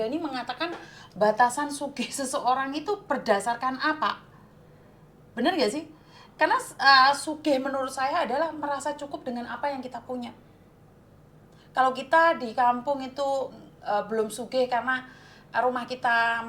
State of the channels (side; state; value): both; identical; correlation 1.00